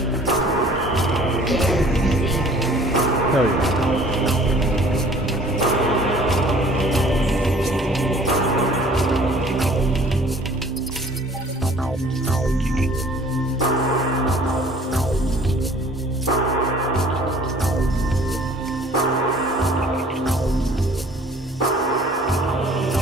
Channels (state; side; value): normal; both; correlation 0.52